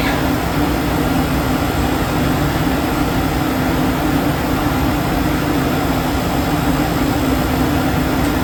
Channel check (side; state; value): both; identical; correlation 1.00